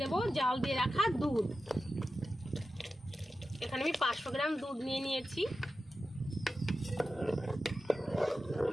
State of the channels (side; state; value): both; normal; correlation 0.92